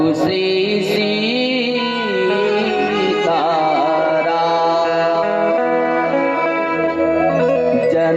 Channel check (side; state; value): both; identical; correlation 1.00